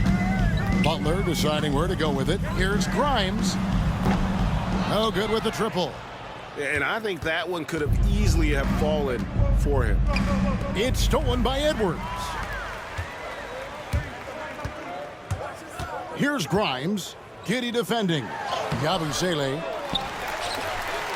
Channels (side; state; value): both; identical; correlation 1.00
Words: Butler deciding where to go with it. Here's Grimes. No good with the triple. And I think that one could have easily have fallen for him. It's stolen by Edwards. Here's Grimes. Giddey defending. Yabusele.